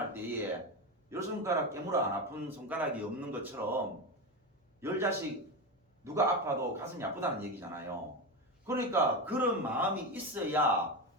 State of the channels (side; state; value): both; normal; correlation 0.17